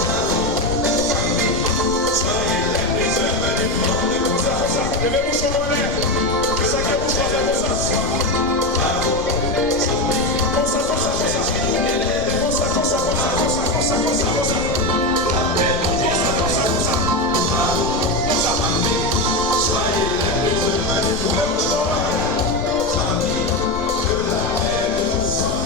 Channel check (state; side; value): noise; left; rumble, 11 dB below the sound